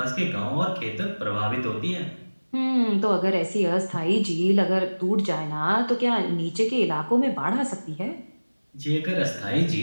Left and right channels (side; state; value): both; inverted; correlation -1.00